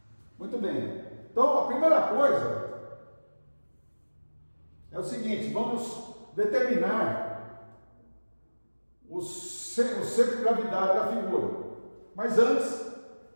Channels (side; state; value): both; inverted; correlation -1.00